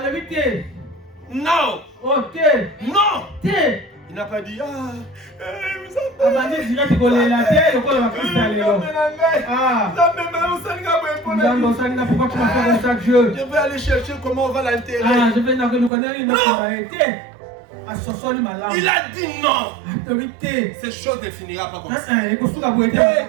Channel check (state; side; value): drops out; left; at 15.9 s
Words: Non. Non. Il n'a pas dit je vais aller chercher comment on va l'enterrer. Il a dit non. Ces choses ne finira pas comme ça.